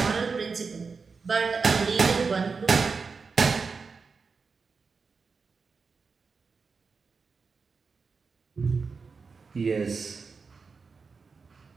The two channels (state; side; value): quieter; left; 4.8 dB